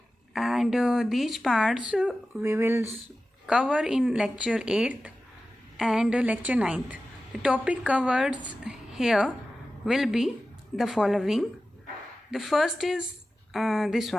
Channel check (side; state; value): both; normal; correlation 0.94